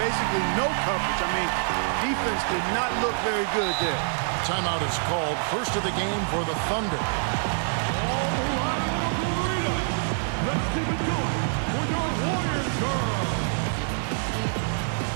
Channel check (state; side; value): silent; left; digital silence